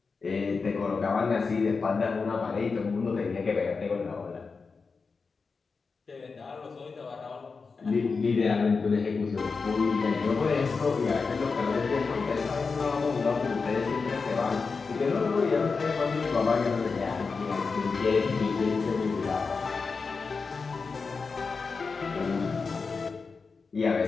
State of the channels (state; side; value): quieter; right; 4.7 dB